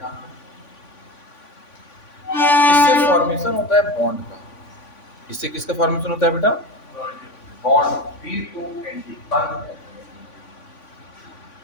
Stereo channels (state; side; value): late; right; 3.5 ms